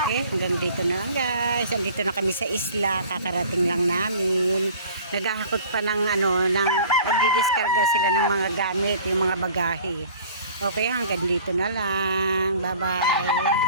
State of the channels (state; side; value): inverted; both; correlation -0.48